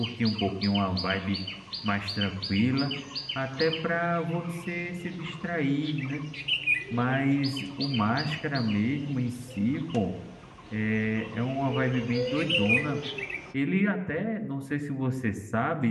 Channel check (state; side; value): identical; both; correlation 1.00